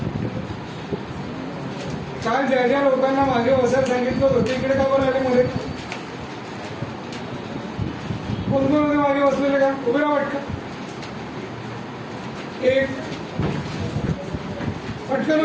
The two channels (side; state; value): both; identical; correlation 1.00